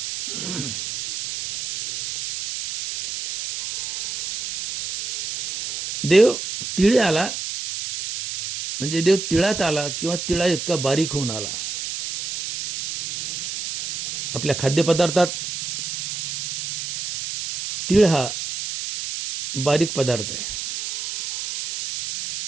देव तिळी आला म्हणजे देव तिळात आला किंवा तिळा इतका बारीक होऊन आला. आपल्या खाद्यपदार्थात तीळ हा बारीक पदार्थ आहे.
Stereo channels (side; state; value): right; noise; hiss, 6 dB below the sound